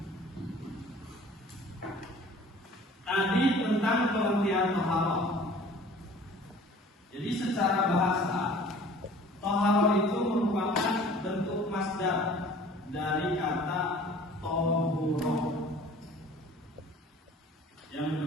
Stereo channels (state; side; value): normal; both; correlation 0.48